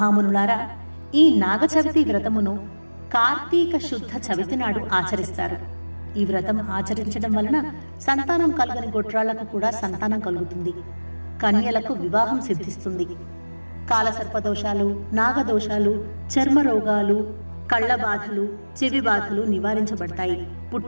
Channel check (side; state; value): both; inverted; correlation -1.00